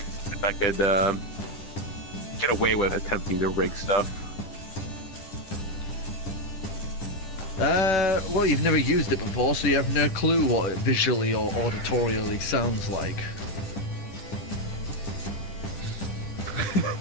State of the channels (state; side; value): late; right; 10 ms